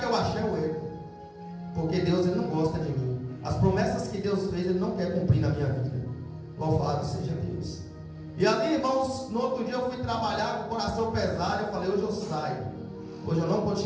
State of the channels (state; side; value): identical; both; correlation 1.00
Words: eu achei é o erro. Porque Deus, Ele não gosta de mim. As promessas que Deus fez, Ele não quer cumprir na minha vida. Louvado seja Deus. E ali, irmãos, no outro dia eu fui trabalhar com o coração pesado. Eu falei, hoje eu saio. Hoje eu não